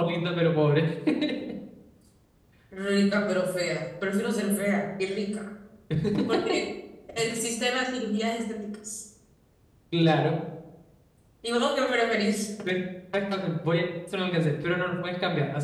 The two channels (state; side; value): identical; both; correlation 1.00